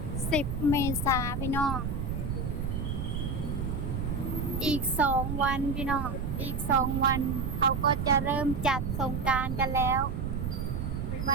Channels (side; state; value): right; noise; rumble, 2 dB below the sound